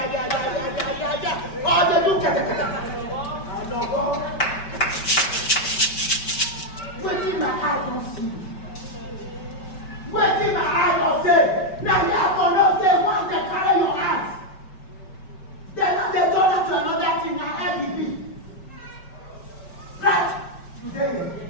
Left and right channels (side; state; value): right; late; 5.2 ms